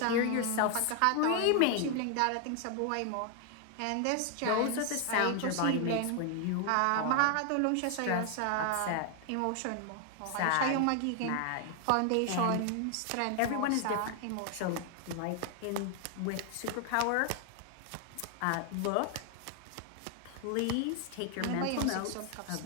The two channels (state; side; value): different; both; correlation 0.00